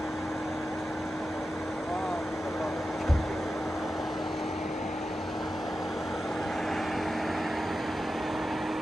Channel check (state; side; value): normal; both; correlation 0.91